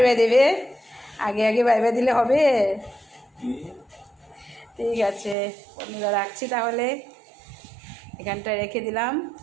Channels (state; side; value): drops out; left; at 5.4 s